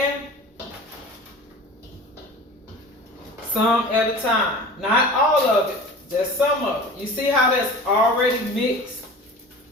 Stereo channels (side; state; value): both; normal; correlation 0.38